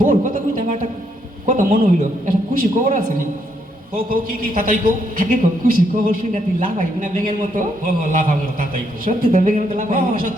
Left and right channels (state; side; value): normal; both; correlation 0.74